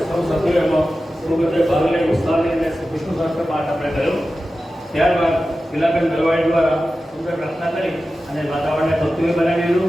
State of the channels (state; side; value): normal; both; correlation 0.94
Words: સૌ સભ્યોએ એમાં પૂર્વતે ભાગ લઈ ઉત્સાહ લઈને વિષ્ણુ સહસ્ત્ર પાઠ આપણે કર્યો. ત્યારબાદ ગિલાબેન દરવાડી દ્વારા સુંદર પ્રાર્થના કરી અને વાતાવરણને ભક્તિમય બનાવી